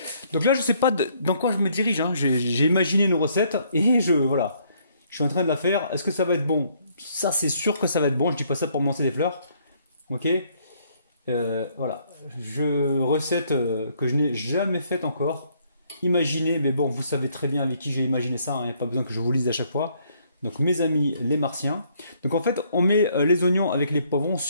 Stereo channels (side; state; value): both; inverted; correlation -0.67